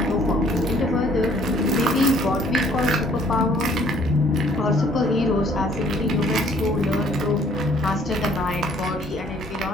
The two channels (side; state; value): both; normal; correlation 0.59